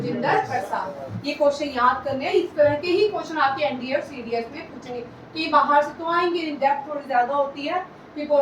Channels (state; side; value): identical; both; correlation 1.00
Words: प्रसाद। ये क्वेश्चन याद करने हैं, इस तरह के ही क्वेश्चन आपके एनडीए और सीडीएस में पूछेंगे, कि बाहर से तो आएंगे, इन डेप्थ थोड़ी ज्यादा होती है। ये